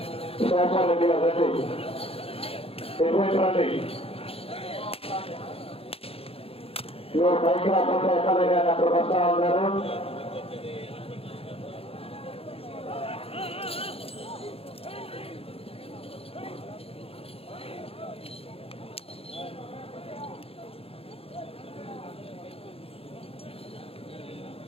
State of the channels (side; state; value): right; late; 0.28 ms